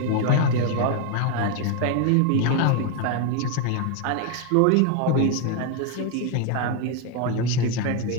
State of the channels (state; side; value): different; both; correlation 0.01